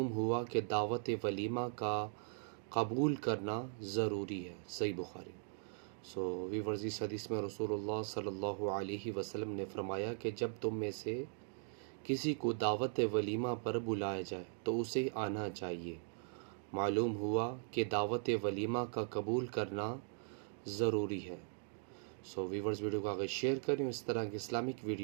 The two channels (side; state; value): left; silent; 52 dB below the other